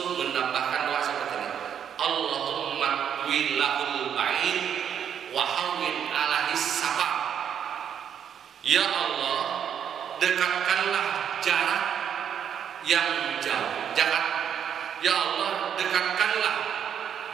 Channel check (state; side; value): quieter; left; 8.5 dB